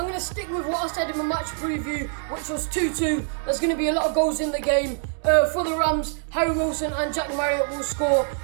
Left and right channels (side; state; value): left; silent; 62 dB below the other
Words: to stick with what I said in my match preview, which was 2-2. There's going to be a lot of goals in the game. For the Rams, Harry Wilson and Jack Marriott will score.